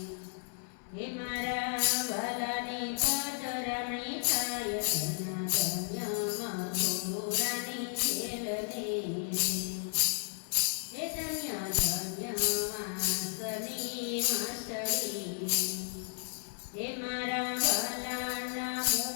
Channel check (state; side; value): silent; right; 55 dB below the other